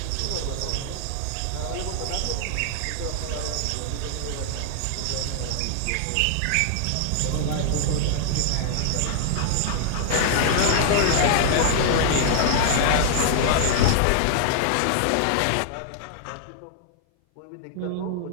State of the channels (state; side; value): different; both; correlation -0.01